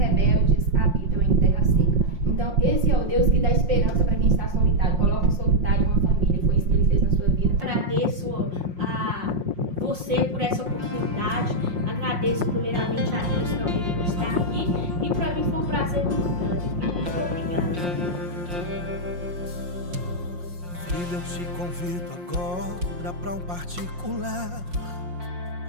habitam em terra seca. Então, esse é o Deus que dá esperança para quem está solitário. Coloca um solitário em uma família, foi isso que Ele fez na sua vida. Agradeço a você por essa oportunidade, agradeço primeiramente a Deus também por estar aqui, e para mim foi um prazer muito grande. Muito obrigada. Filho, eu te convido agora para um particular.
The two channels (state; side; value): late; left; 5.6 ms